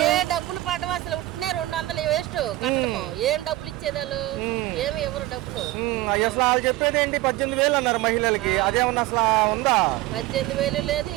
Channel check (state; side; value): quieter; left; 17.1 dB